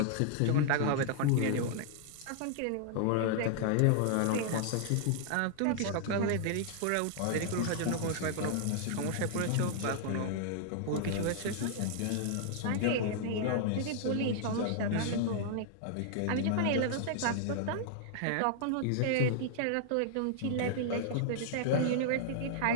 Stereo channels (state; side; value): different; both; correlation -0.01